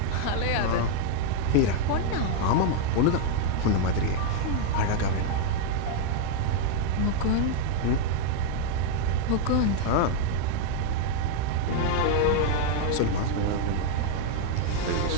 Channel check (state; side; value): different; both; correlation 0.00